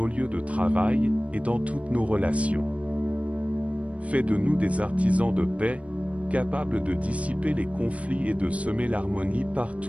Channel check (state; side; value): late; left; 0.065 ms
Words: lieux de travail et dans toutes nos relations. Fais de nous des artisans de paix, capables de dissiper les conflits et de semer l'harmonie